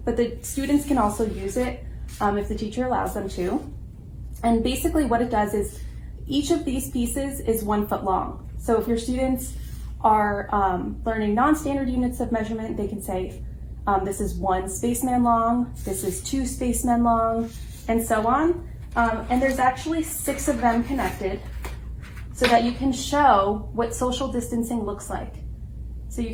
but the students can also use it if the teacher allows them to. And basically what it does is each of these pieces is 1 foot long. So if your students are learning non-standard units of measurement, they can say, this is 1 spaceman long, this is 2 spacemen long, and so on. And there's actually 6 of them connected so that you can show what social distancing looks like. So you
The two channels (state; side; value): identical; both; correlation 1.00